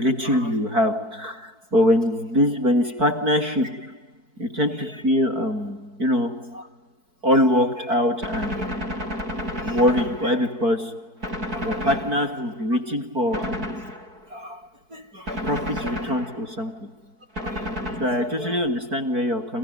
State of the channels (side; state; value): left; late; 4.6 ms